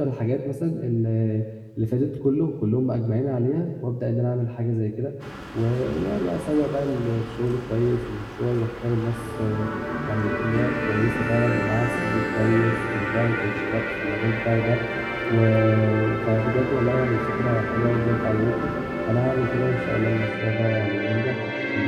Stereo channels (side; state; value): both; identical; correlation 1.00